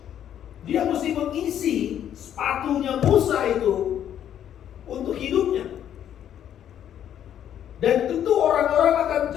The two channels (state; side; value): quieter; right; 10.1 dB